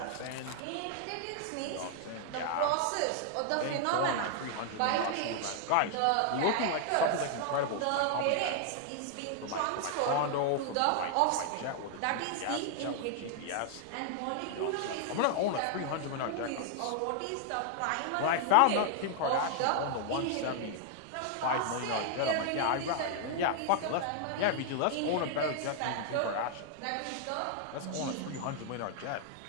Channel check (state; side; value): different; both; correlation 0.00